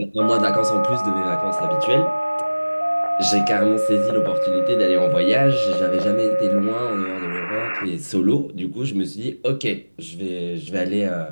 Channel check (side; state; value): both; inverted; correlation -1.00